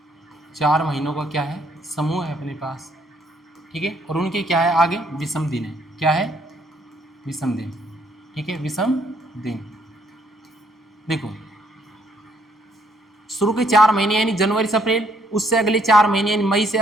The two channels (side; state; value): both; normal; correlation 0.68